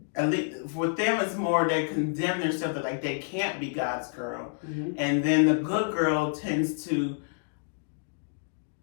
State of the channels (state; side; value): silent; right; digital silence